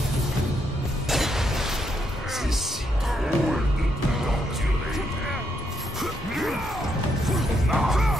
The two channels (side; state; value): both; normal; correlation 0.77